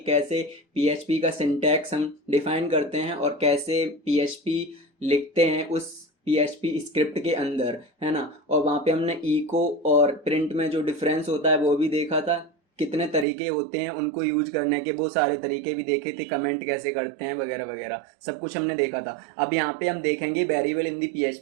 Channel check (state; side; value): drops out; left; at 13.2 s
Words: कैसे PHP का सिंटैक्स हम डिफाइन करते हैं और कैसे PHP लिखते हैं उस PHP स्क्रिप्ट के अंदर, है ना। और वहाँ पे हमने इको और प्रिंट में जो डिफरेंस होता है वो भी देखा था, कितने तरीके होते हैं उनको यूज करने के, वो सारे तरीके भी देखे थे, कमेंट कैसे करते हैं वगैरह वगैरह सब कुछ हमने देखा था। अब यहाँ पे हम देखेंगे वेरिएबल इन दी